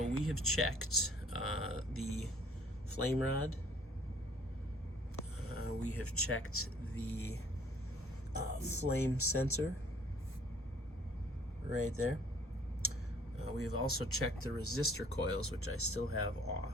we have checked the flame rod. We have checked the flame sensor right there. We have also checked the resistor coils, which I still have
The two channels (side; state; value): both; normal; correlation 0.57